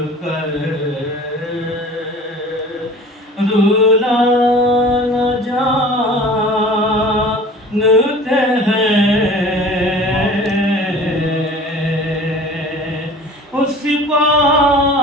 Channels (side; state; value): both; normal; correlation 0.43